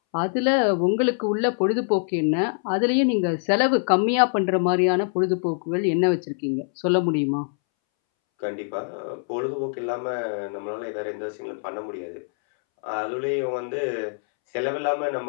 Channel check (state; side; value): silent; right; 62 dB below the other